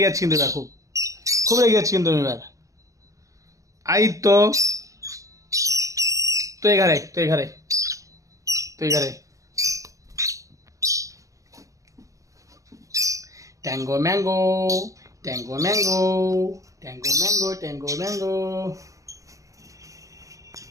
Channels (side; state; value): left; late; 0.16 ms